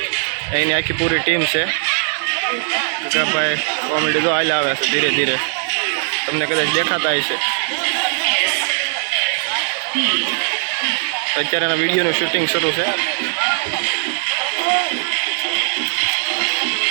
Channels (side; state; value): left; silent; digital silence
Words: एनी आखी पूरी टीम है। गगाभाई कॉमेडी जो आले आवे छे धीरे धीरे तमने कदाच देखाता है। अत्यारे विडियो शूटिंग शुरू है।